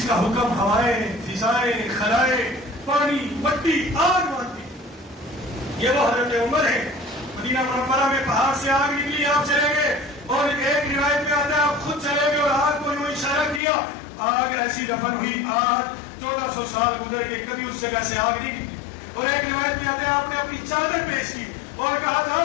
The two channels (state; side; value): drops out; right; at 13.6 s